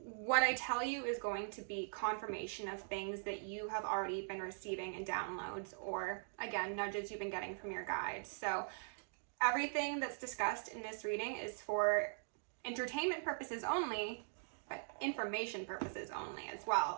I tell you is going to be confirmation of things that you have already been receiving in downloads or, again, nudges you've been getting from your guides. So everything that's discussed in this reading is for entertainment purposes only, but information purposes only as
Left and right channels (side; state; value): left; silent; digital silence